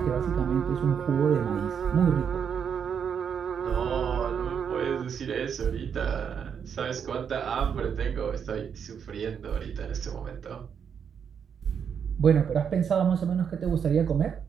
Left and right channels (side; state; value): left; quieter; 7.4 dB